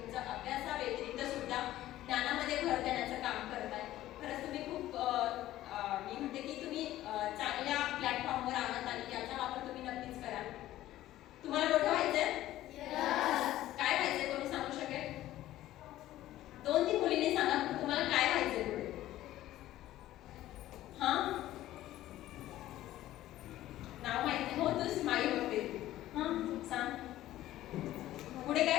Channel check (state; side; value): quieter; right; 14.5 dB